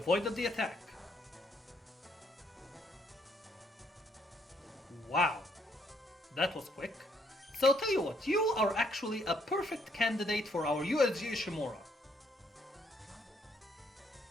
the attack. Wow, that was quick. So tell you what, you are actually a perfect candidate for our USG Ishimura.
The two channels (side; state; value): both; normal; correlation 0.70